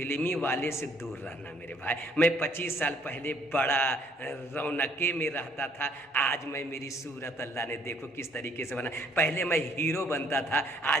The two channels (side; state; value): both; normal; correlation 0.63